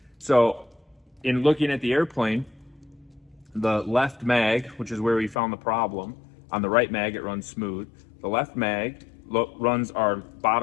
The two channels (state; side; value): drops out; right; at 5.4 s